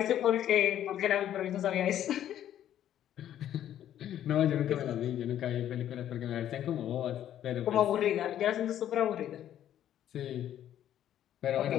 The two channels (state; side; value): quieter; right; 11.2 dB